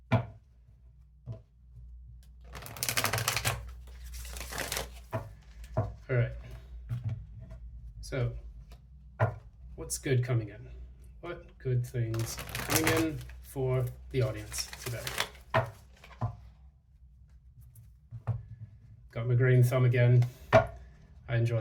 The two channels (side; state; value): both; identical; correlation 1.00